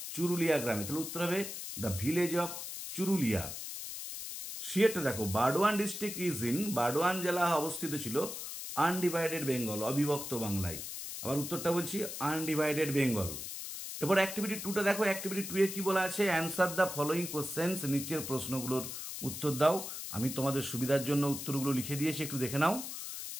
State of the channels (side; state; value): left; noise; hiss, 7 dB below the sound